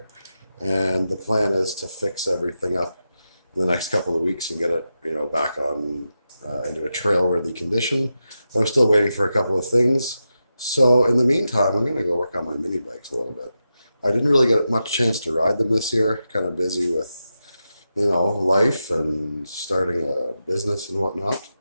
and the plan is to fix everything up in the next couple of weeks and get it, back on into a trail-worthy condition. But I'm still waiting for a couple of things. So in the meantime, I'm going to go work on my mini bikes a little bit. I didn't really get much chance to ride them this year. Kind of busy with, life and starting a business and whatnot.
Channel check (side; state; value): both; inverted; correlation -0.89